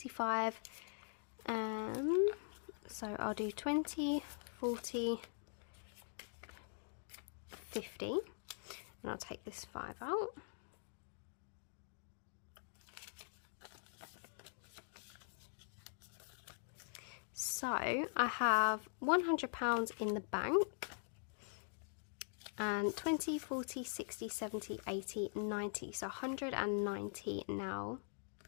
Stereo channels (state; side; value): silent; right; digital silence